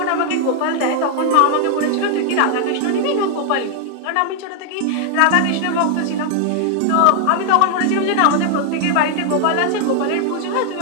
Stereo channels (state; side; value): different; both; correlation 0.00